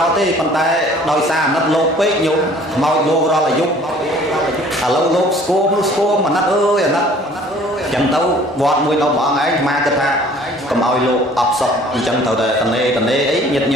thế còn tay đôi xa nát lô pê nhung mau vô ra là giúp lâu lô sco mà nát ơi nát chẳng tấu vọt mùi đâu bỏ ấy ma cái tha cầm ao lô ập sọc chẳng thầu đời tần nê ấy nhiệt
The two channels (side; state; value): both; normal; correlation 0.53